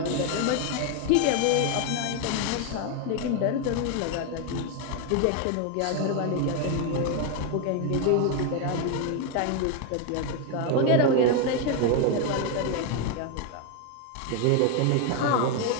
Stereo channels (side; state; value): both; different; correlation 0.01